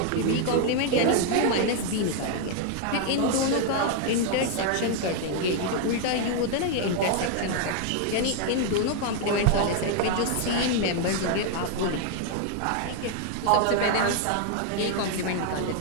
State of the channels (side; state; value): both; different; correlation 0.00